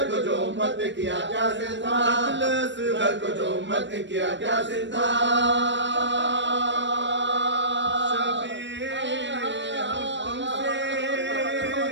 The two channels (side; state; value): left; late; 0.53 ms